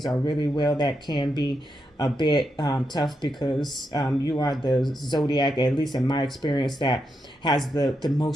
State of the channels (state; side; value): normal; both; correlation 0.84